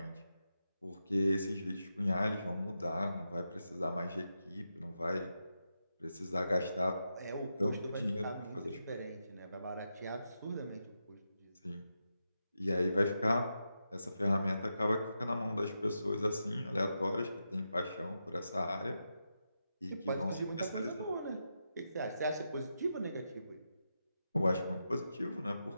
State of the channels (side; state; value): both; inverted; correlation -0.87